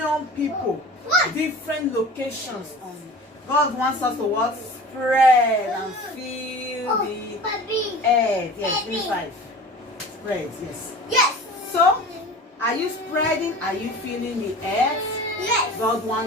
people. Different locations on. God wants us to what? Spread and fill the earth. Yes, 25. Spread, yes. Yes. So, are you spreading? Are you filling the earth? Yes. God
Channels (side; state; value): both; normal; correlation 0.39